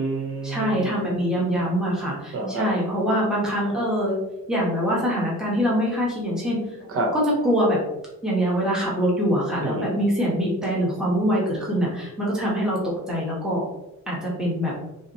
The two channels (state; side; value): normal; both; correlation 0.44